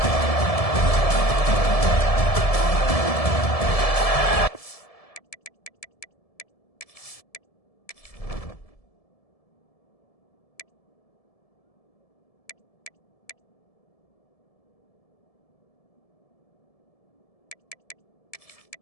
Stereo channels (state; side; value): late; right; 1.7 ms